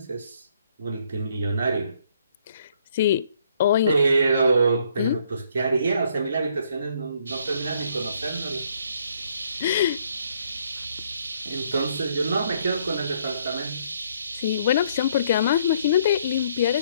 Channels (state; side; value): inverted; both; correlation -0.67